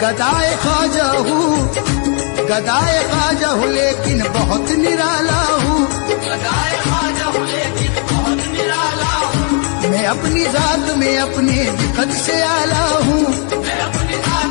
गदाए ख्वाजा हूँ, गदाए ख्वाजा हूँ लेकिन बहुत निराला हूँ, गदाए ख्वाजा हूँ लेकिन बहुत निराला हूँ, मैं अपनी जात में अपने भी कद से आला हूँ, मैं अपनी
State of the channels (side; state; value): right; quieter; 39.8 dB